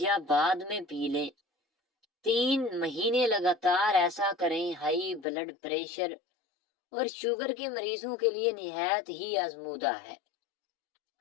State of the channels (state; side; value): drops out; right; at 5.2 s